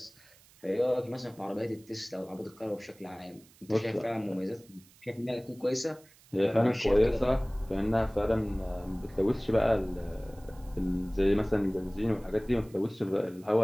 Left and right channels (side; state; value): right; noise; hiss, 27 dB below the sound